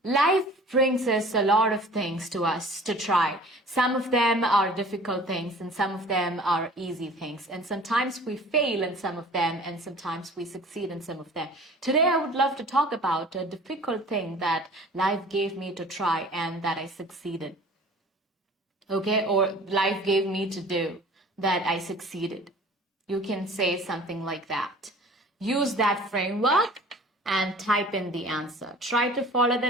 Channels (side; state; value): both; normal; correlation 0.46